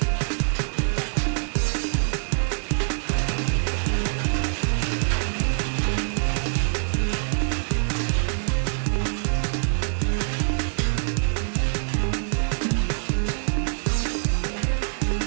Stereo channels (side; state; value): left; silent; 62 dB below the other